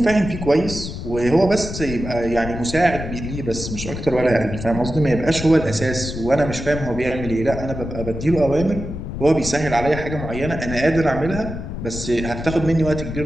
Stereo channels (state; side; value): noise; left; rumble, 7 dB below the sound